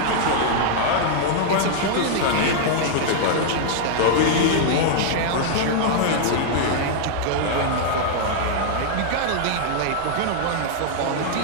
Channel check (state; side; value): different; both; correlation -0.01